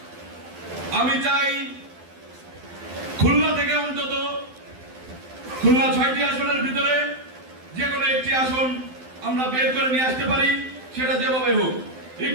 আমি চাই খুলনা থেকে অন্তত খুলনা 6টি আসনের ভিতরে যে কোনো একটি আসন আমরা বের করে নিয়ে আসতে পারি, সেটা যেভাবে হোক।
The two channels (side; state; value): left; late; 12 ms